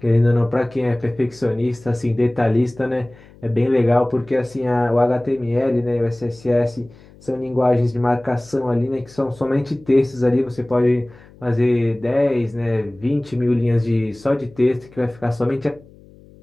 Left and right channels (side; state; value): left; noise; hum, 24 dB below the sound